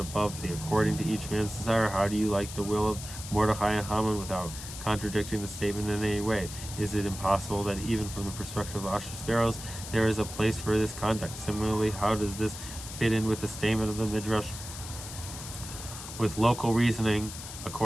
the according to each man's desire. How do you like the will of Mordechai and Haman without contradicting the statement in any way? Is it impossible that even from the perspective of Ahasuerus there is a place for this conduct? Similarly, how does this fit in with the statement of the Midrash with local reasoning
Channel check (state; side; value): noise; left; hiss, 11 dB below the sound